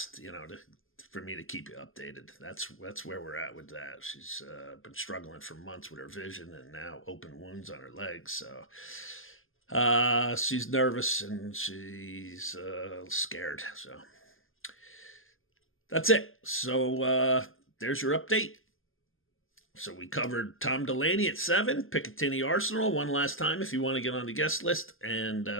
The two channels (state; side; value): late; right; 0.59 ms